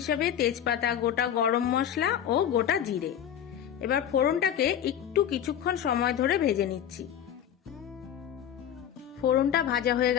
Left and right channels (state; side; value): quieter; right; 9.6 dB